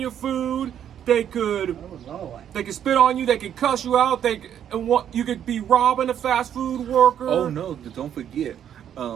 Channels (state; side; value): quieter; left; 9.6 dB